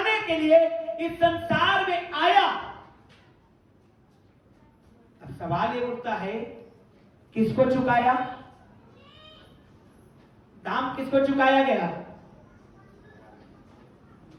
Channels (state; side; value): identical; both; correlation 1.00